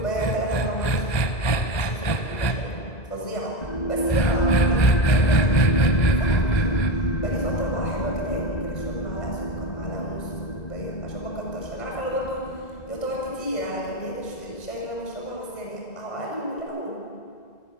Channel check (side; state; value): right; late; 2.0 ms